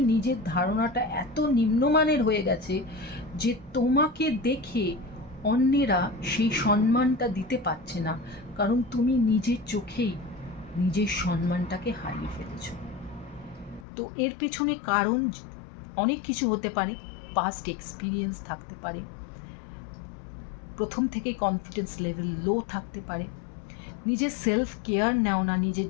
নিজের ধারণাটা এত নিম্নমানের হয়ে গেছে যে তোমাকে দেখে অন্যেরা সেই সম্মানটা দিতে পারছে না, কারণ তুমি নিজের চোখেই নিজের সম্মানটাকে হারিয়ে ফেলেছ। তো এর পেছনে কারণ অনেক কিছু হতে পারে, পাস্ট এক্সপিরিয়েন্স থাকতে পারে, প্রথম থেকেই কনফিডেন্স লেভেল লো থাকতে পারে। নিজের সেলফ কেয়ার নেও না,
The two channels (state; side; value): drops out; right; at 13.9 s